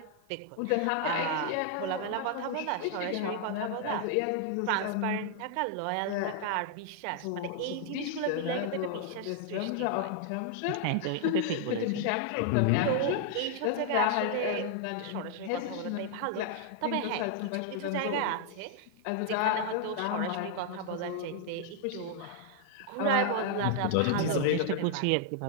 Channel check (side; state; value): both; different; correlation 0.00